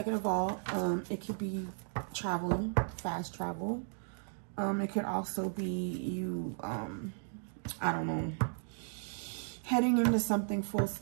of all, it could be traveling, fast travel. It could also be you, I don't know, heading into something full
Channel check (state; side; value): silent; left; 54 dB below the other